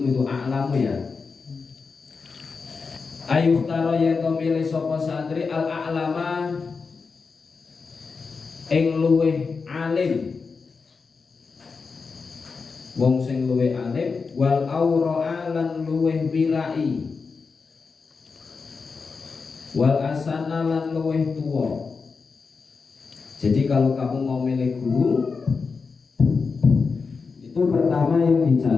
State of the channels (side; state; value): right; quieter; 4.9 dB